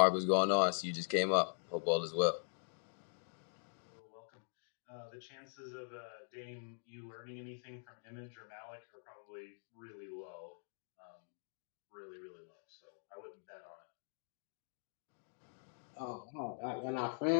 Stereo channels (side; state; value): right; silent; digital silence